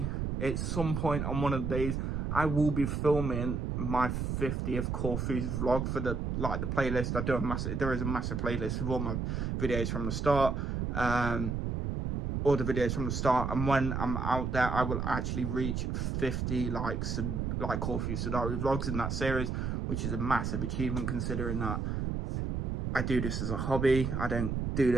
at some point on one of the days, I will be filming my 50th Corfu vlog for the playlist. There is a massive playlist with all my videos from the start, all the videos from the start, and when I'm out there, I will actually reach 50 like Corfu Sidari vlogs in that series, which is a massive achievement considering that I do this as a hobby. I don't do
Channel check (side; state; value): right; noise; rumble, 1 dB below the sound